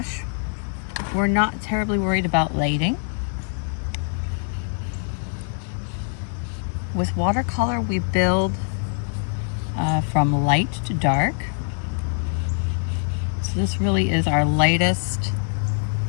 we're not terribly worried about lading. With watercolor, we build from light to dark. So this really is our lightest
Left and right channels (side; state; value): right; silent; digital silence